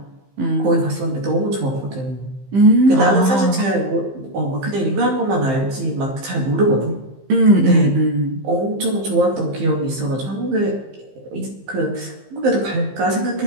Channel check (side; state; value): left; late; 15 ms